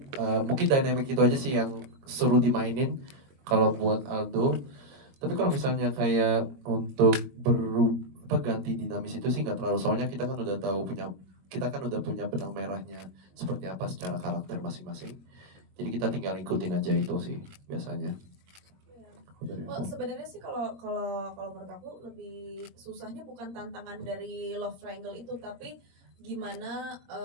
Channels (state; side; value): late; left; 22 ms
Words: mungkin dynamic itu aja sih yang seru dimainin kalau buat Aldo. Tapi kalau misalnya kayak untuk ganti dinamis itu sih nggak terlalu, soalnya kita kan udah punya benang merahnya seperti apa secara karakter masing-masing. Jadi kita tinggal ikutin aja itu sih biasanya. Oh, sebenarnya sih kalau menurut aku lebih susahnya bukan tantangan dari love triangle itu, tapi gimana